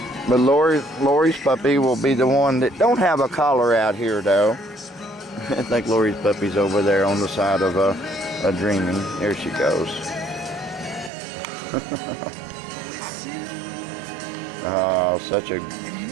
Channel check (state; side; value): drops out; left; at 11.1 s